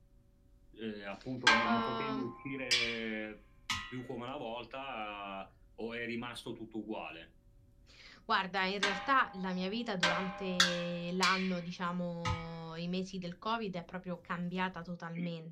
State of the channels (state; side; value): identical; both; correlation 1.00